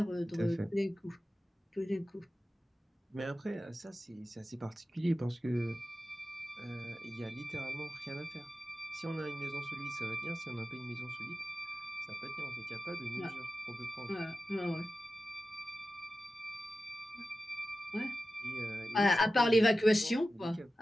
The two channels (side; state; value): both; normal; correlation 0.93